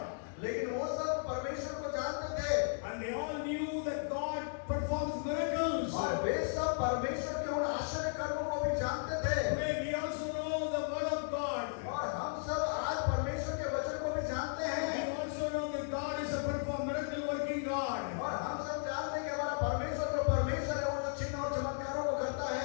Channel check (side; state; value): right; silent; digital silence